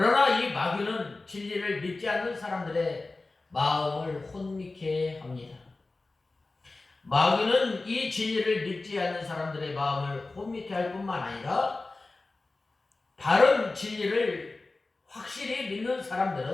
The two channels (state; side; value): quieter; right; 3.4 dB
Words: 이 마귀는 진리를 믿지 않는 사람들의 마음을 혼미케 합니다. 마귀는 이 진리를 믿지 않는 사람들의 마음을 혼미케 할 뿐만 아니라 바른 진리를 확실히 믿는